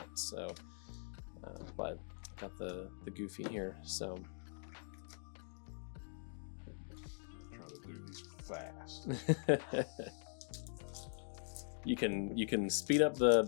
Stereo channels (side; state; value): right; silent; digital silence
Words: So, but I got the Goofy here. So. Fast. You can speed up the